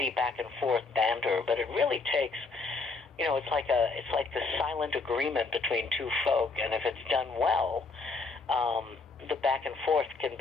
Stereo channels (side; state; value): right; quieter; 4.0 dB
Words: back and forth banter, but it really takes, it's like the silent agreement between two folk, and if it's done well, the back and forth can